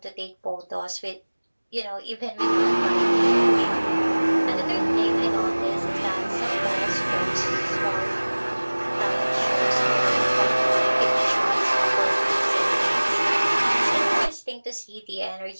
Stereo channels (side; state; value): both; inverted; correlation -1.00